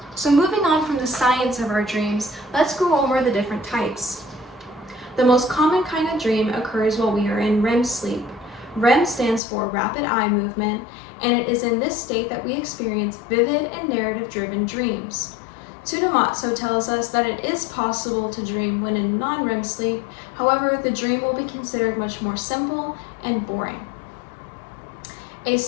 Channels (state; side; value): drops out; right; at 9.4 s